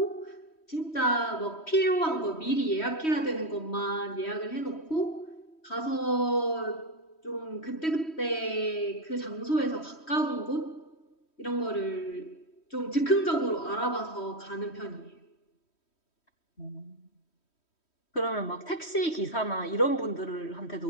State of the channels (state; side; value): late; right; 3.1 ms